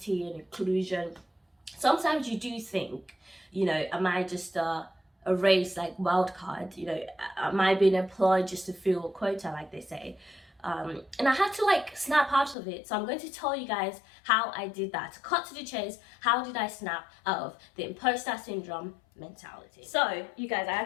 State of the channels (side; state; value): right; drops out; at 12.6 s